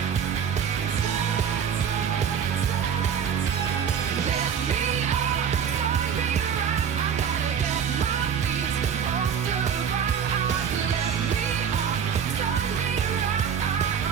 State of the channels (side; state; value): left; quieter; 7.6 dB